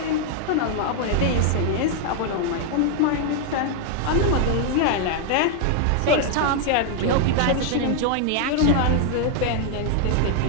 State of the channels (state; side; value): different; both; correlation 0.00